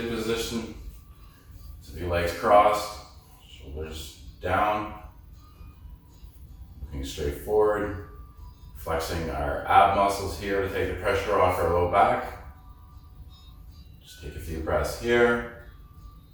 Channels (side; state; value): both; identical; correlation 1.00